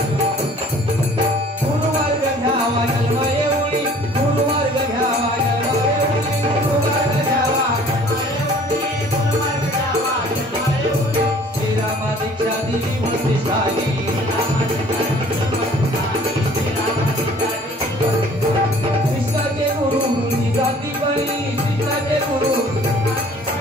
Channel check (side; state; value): both; normal; correlation 0.52